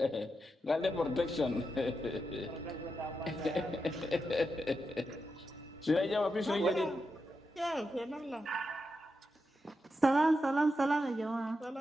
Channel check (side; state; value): both; normal; correlation 0.87